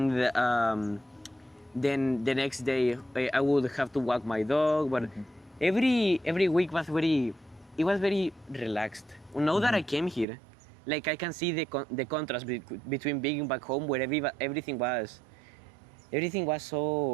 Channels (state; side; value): drops out; left; at 10.2 s